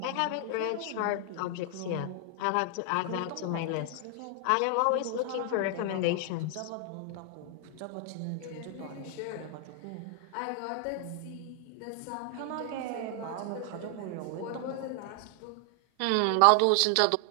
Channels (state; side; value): different; both; correlation 0.00